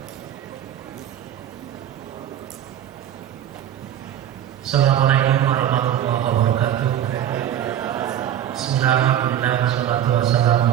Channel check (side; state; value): left; quieter; 10.8 dB